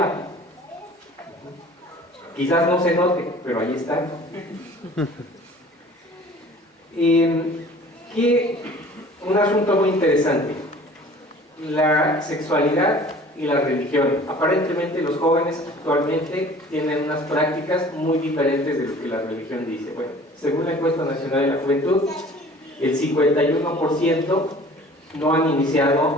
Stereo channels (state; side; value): normal; both; correlation 0.48